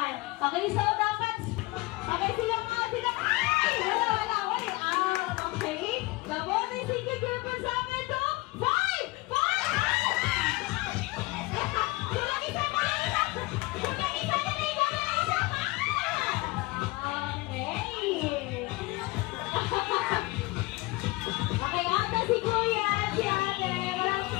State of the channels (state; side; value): quieter; right; 22.2 dB